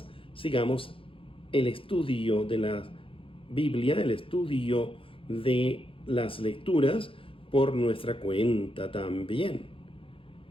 sigamos el estudio de la Biblia, el estudio de las lecturas por nuestra cuenta también.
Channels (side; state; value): right; late; 0.26 ms